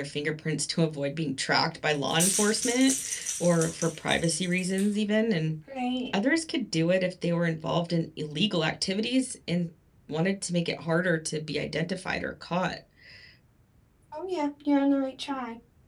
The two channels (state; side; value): identical; both; correlation 1.00